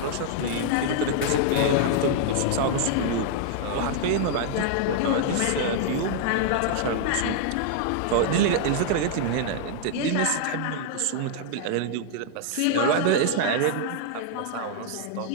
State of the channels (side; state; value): both; different; correlation -0.01